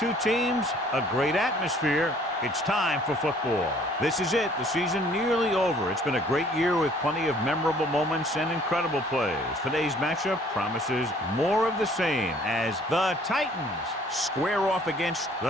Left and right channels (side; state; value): both; normal; correlation 0.57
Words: teams, a great atmosphere. It's time for football. This is it. The season nearly over. It's been a great year with plenty of memorable moments and incredible plays. Today's matchup promises more of the same as the Titans square off against